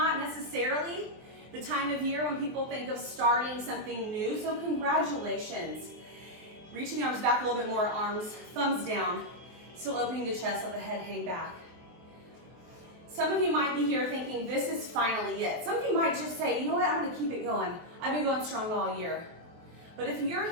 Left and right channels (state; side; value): late; left; 23 ms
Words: necessarily the time of year when people think of starting something new, so congratulations. Reaching the arms back a little bit more, arms, thumbs down, still opening the chest, let the head hang back. Some of you might be here thinking, this is finally it. Some of you might just say, you know what, I'm gonna keep it going. I've been going strong all year. But if you're